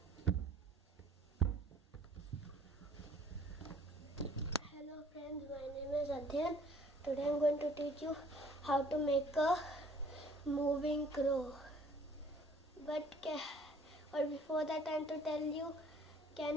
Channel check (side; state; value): both; normal; correlation 0.55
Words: Hello friends, my name is Adhyan. Today I am going to teach you how to make a moving crow. But before that I am to tell you,